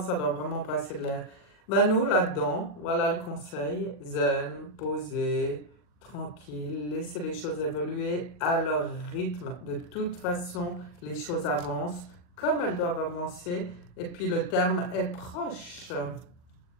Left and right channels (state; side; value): late; right; 40 ms